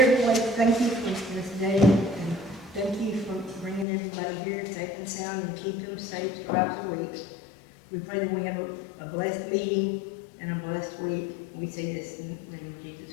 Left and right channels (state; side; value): drops out; right; at 3.9 s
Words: Lord, thank you for this day, and thank you for bringing everybody here safe and sound and keep them safe throughout the week. We pray that we have a blessed meeting and a blessed week. We say this in the name of